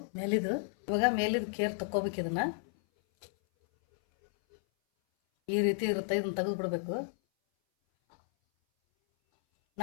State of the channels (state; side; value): silent; right; 56 dB below the other